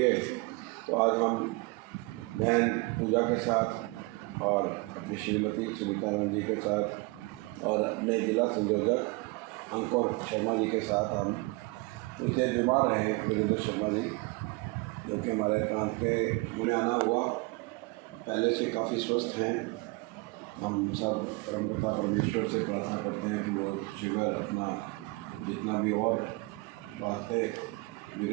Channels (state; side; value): quieter; left; 25.6 dB